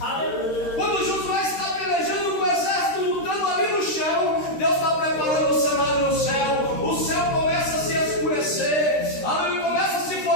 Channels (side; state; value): right; late; 13 ms